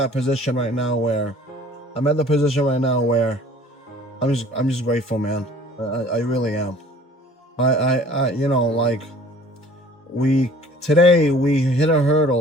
position right now where I'm just grateful, man. I really am. I you know, like, today we hit a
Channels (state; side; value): normal; both; correlation 0.51